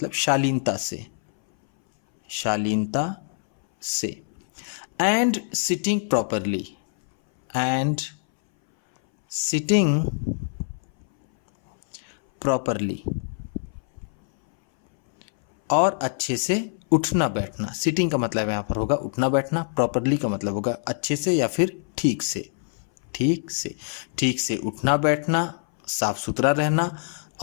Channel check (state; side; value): silent; right; 60 dB below the other